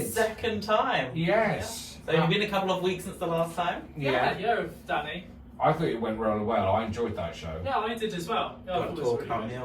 Second time. Yes. So it's been a couple of weeks since the last time. Yeah, Danny. I thought it went really well. I enjoyed that show. Yeah, I did as well. Yeah, I thought Don't it was talk really about good.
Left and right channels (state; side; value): identical; both; correlation 1.00